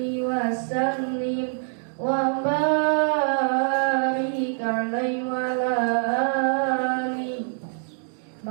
wa sallim wa barik alaihi wa ala alihi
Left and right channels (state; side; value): silent; left; digital silence